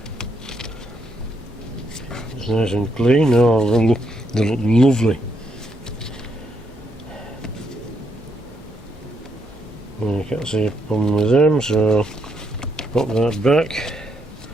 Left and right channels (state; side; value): normal; both; correlation 0.77